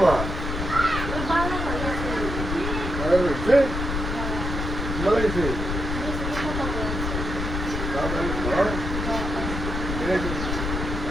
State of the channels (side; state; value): left; noise; rumble, 3 dB below the sound